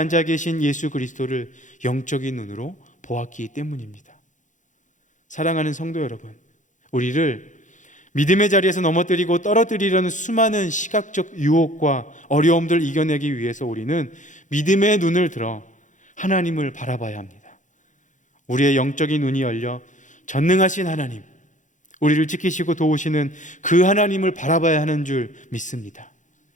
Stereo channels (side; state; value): right; late; 0.36 ms